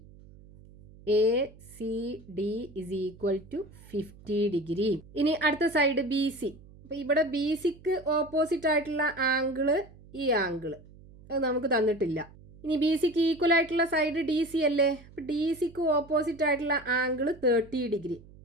A C D is equal to 50 degree. ഇനി അടുത്ത side B C. അപ്പോൾ ഇവിടെ B സിക്ക് ഓപ്പോസിറ്റ് ആയിട്ടുള്ള ആംഗിള് ഈ ആംഗിള് അത് നമുക്ക് തന്നിട്ടില്ല. ഇനി ബി സിക്ക് ഈക്വൽ ആയിട്ടുള്ള സൈഡ് ഡി സി അല്ലേ. അപ്പോൾ ഡി സിക്ക് ഓപ്പോസിറ്റ് ആയിട്ടുള്ള ആംഗിള് 30 ഡിഗ്രി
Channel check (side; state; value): right; noise; hum, 22 dB below the sound